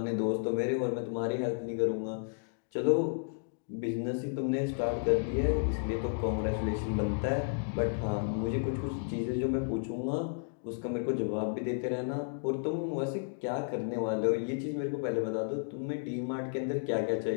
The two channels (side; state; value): right; silent; digital silence